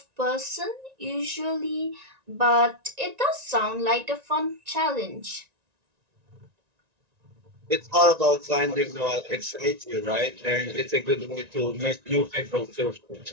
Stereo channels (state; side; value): late; left; 1.9 ms